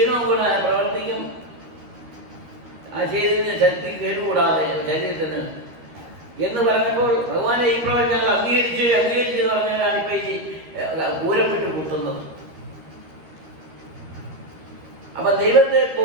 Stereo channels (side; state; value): left; late; 13 ms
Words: കൂടെ പ്രവർത്തിക്കും. ആ ശരീരത്തിന് ശക്തി കേടുകൂടാതെ ശരീരത്തിന് എന്ന് പറഞ്ഞപ്പോൾ ഭഗവാനെ ഈ പ്രവചനം ഞങ്ങൾ അംഗീകരിച്ച് എന്ന് പറഞ്ഞാലാണ് ഇപ്പം ഈ പൂരപ്പെട്ട് കുത്തുന്നത്. അപ്പൊ ദൈവത്തെ